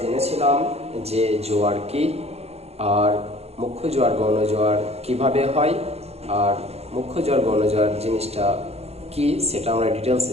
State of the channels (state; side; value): late; left; 0.30 ms